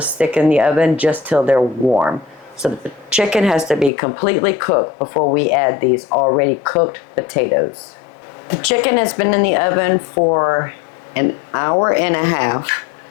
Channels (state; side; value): drops out; right; at 3.9 s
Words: stick in the oven just till they're warm. So the chicken has to be completely cooked before we add these already cooked potatoes. The chicken has been in the oven for an hour and a half.